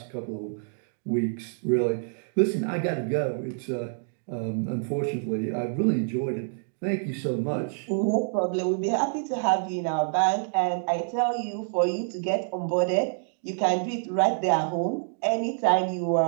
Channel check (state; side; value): silent; left; digital silence